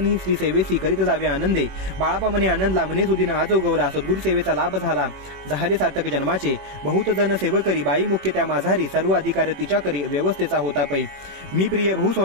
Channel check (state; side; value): late; left; 21 ms